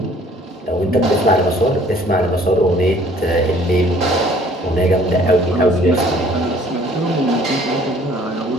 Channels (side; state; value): both; normal; correlation 0.56